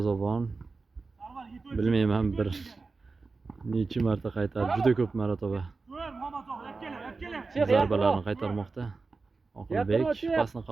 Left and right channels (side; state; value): left; quieter; 4.1 dB